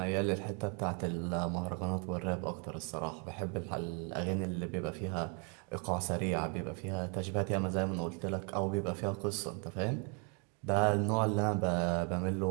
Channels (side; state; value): left; quieter; 36.7 dB